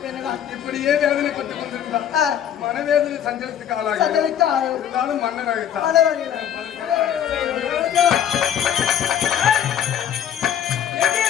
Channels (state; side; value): quieter; right; 9.5 dB